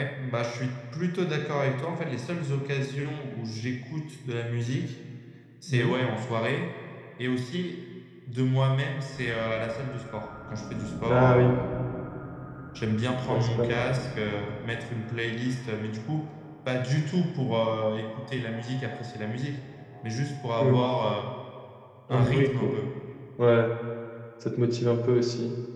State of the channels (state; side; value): identical; both; correlation 1.00